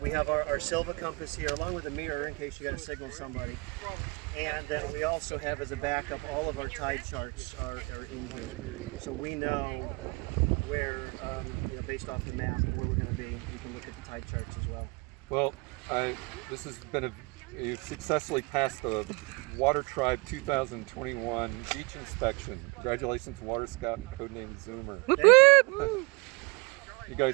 we have our Silva compass here along with a mirror in case you got to signal somebody. And then we also have as a backup all of our tide charts are in here. So we know where, based off the map, where we're going to be. We can look at the tide charts as well. Well, this has been you successfully passed the Water Tribe 2021 beach inspection. Congratulations, Water Scout and codename Zoomer. Whoop, Thank whoop. You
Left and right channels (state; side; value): quieter; left; 27.8 dB